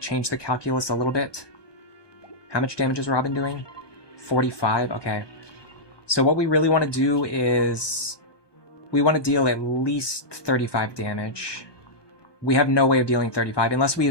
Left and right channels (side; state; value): right; late; 1.2 ms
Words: the calculus a little bit. How much damage is Robin doing? 45? Okay. So what we really want to do is... We want to deal at least 35 damage. We have no way of dealing 35 unless we